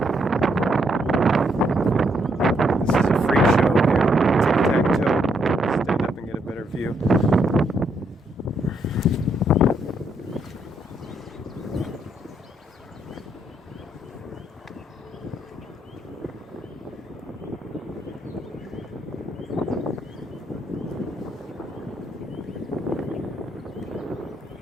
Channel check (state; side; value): normal; both; correlation 0.74